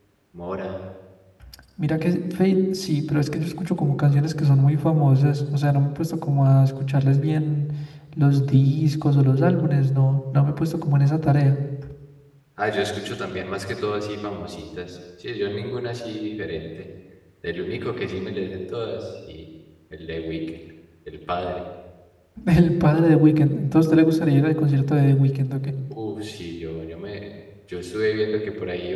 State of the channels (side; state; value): both; identical; correlation 1.00